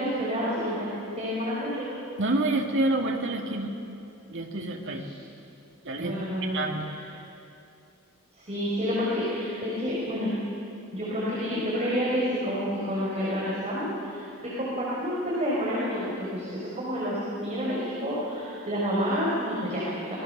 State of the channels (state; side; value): normal; both; correlation 0.38